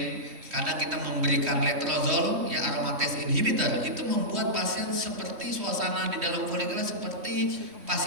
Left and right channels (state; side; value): late; left; 3.1 ms